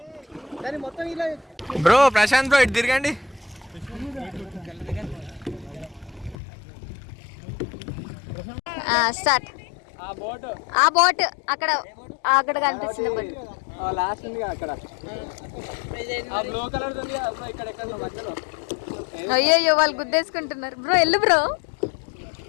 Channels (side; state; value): right; drops out; at 6.4 s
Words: బ్రో ప్రశాంత్ బ్రో, ఇటు తిరగండి. స్టార్ట్. ఆ బోట్ అక్కడ అక్కడ కనిపిస్తుంది బోట్. అయ్యో వాళ్ళు గుద్దేసుకుంటున్నారు. బ్రో వెళ్ళు బ్రో.